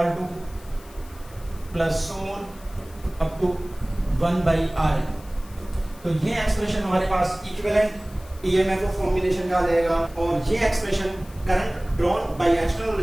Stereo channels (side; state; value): left; noise; hiss, 23 dB below the sound